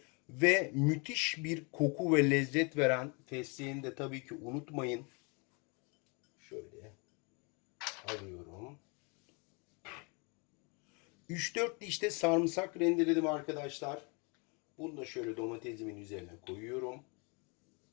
Ve müthiş bir koku ve lezzet veren fesleğeni de tabii ki unutmayın. Şöyle alıyorum. 3-4 diş de sarımsak rendeledim arkadaşlar. Bunu da şöyle domatesimin üzerine koyuyorum.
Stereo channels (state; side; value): quieter; right; 32.5 dB